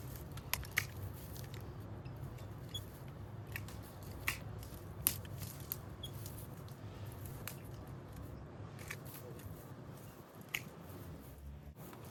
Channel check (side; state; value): both; identical; correlation 1.00